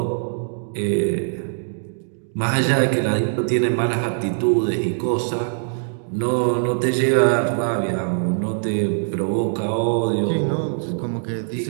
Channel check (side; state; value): left; silent; digital silence